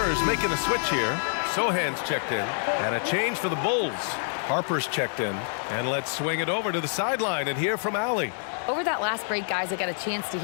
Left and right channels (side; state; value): right; silent; digital silence